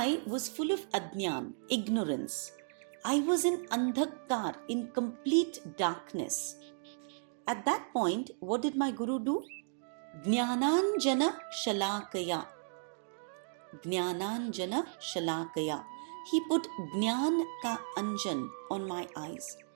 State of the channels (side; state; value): left; silent; digital silence